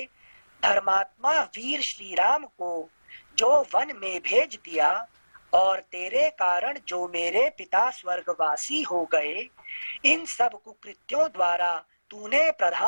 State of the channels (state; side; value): inverted; both; correlation -1.00